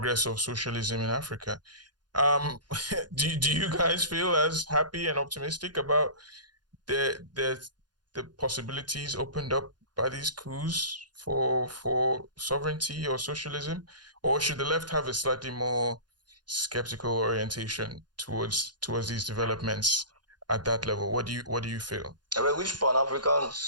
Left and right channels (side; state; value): left; late; 0.70 ms